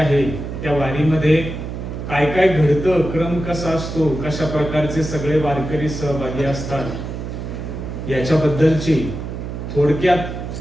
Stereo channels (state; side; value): noise; right; hum, 7 dB below the sound